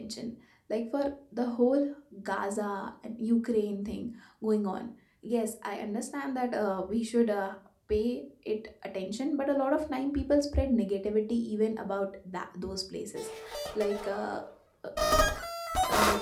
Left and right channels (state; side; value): identical; both; correlation 1.00